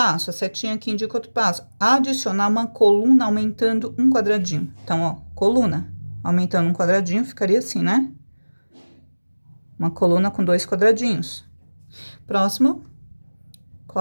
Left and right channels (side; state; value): both; inverted; correlation -1.00